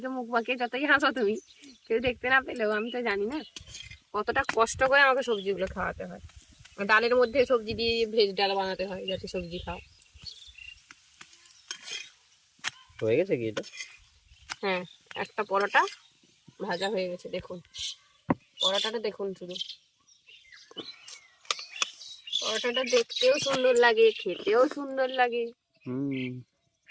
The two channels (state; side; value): identical; both; correlation 1.00